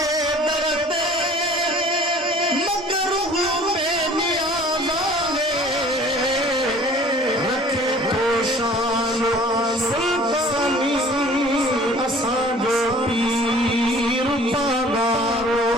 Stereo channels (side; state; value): both; normal; correlation 0.49